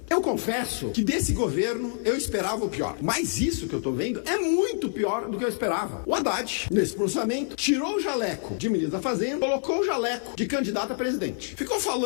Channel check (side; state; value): right; silent; 60 dB below the other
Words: Eu confesso que desse governo eu esperava o pior, mas isso que eu tô vendo é muito pior do que eu esperava. O Haddad, nesse pronunciamento, tirou o jaleco de ministro da Fazenda, colocou o jaleco de candidato a presidente. Ficou